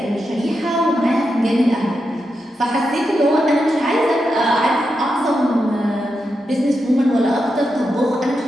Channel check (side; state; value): both; normal; correlation 0.87